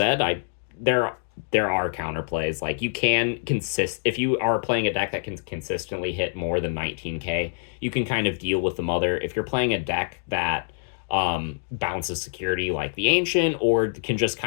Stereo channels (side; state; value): right; silent; digital silence